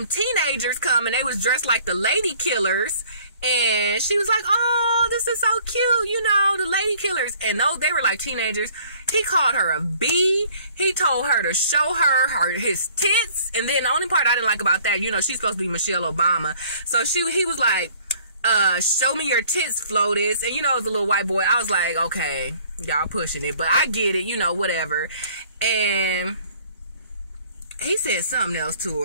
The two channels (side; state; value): both; inverted; correlation -0.56